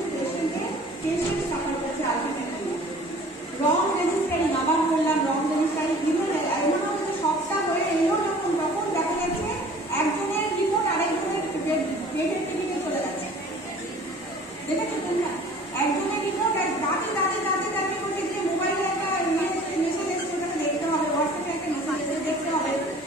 পেশেন্ট সাফার করছে আলটিমেটলি। রং রেজিস্টারিং, আবার বললাম রং রেজিস্টারিং, এমনও সবটা হয়ে এলো যখন তখন দেখা যাচ্ছে একজনের রিপোর্ট আরেকজনের পেটের টিভিতে চলে যাচ্ছে। দেখেছো তোমরা? একজনের রিপোর্ট দাঁড়িয়ে করতে গিয়ে মোবাইলে একটা মেসেজ এসছে, ওটাকে দেখতে হবে, হোয়াটসঅ্যাপে একটা মেসেজ এসে দেখতে হবে,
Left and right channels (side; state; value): both; normal; correlation 0.48